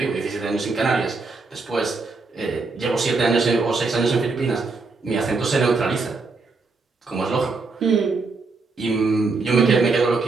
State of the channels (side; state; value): left; quieter; 4.0 dB